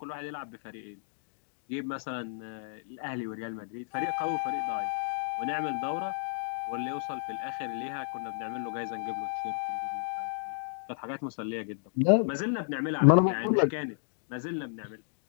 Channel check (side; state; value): right; silent; digital silence